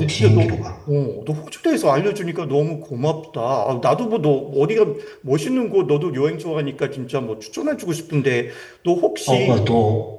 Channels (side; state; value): both; identical; correlation 1.00